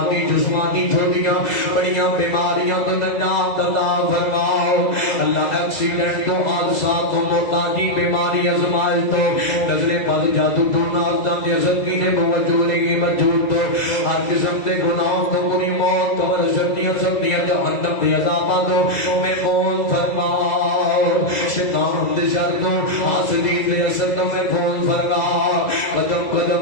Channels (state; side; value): late; right; 2.0 ms